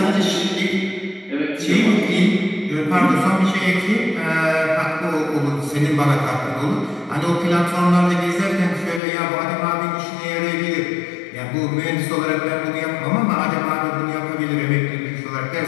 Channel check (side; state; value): right; drops out; at 9.0 s